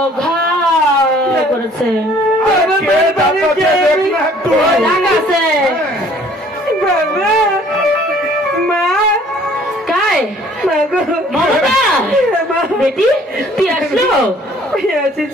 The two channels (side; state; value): both; normal; correlation 0.57